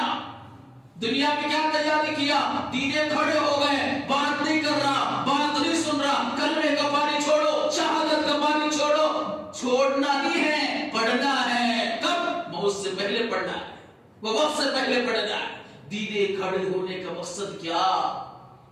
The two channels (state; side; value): identical; both; correlation 1.00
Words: دنیا میں کیا تیاری کیا؟ دیدے کھڑے ہو گئے، بات نہیں کر رہا، بات نہیں سن رہا، کلمے کا پانی چھوڑو، شہادت کا پانی چھوڑو۔ چھوڑنا نہیں ہے، پڑھنا ہے۔ کب؟ موت سے پہلے پڑھنا ہے، وہ وقت سے پہلے پڑھنا ہے۔ دیدے کھڑے ہونے کا مقصد کیا؟